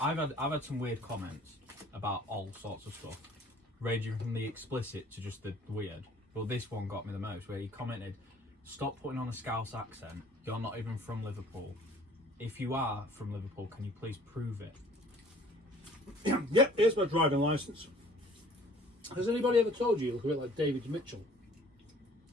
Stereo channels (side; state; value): both; normal; correlation 0.53